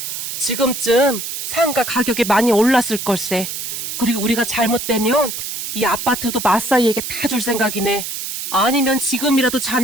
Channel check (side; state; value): right; noise; hiss, 5 dB below the sound